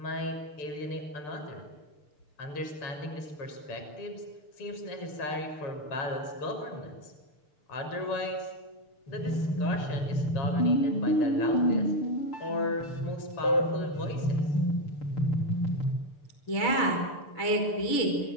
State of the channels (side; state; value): right; late; 6.8 ms